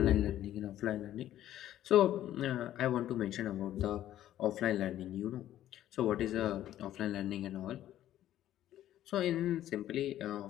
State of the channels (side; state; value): right; quieter; 12.6 dB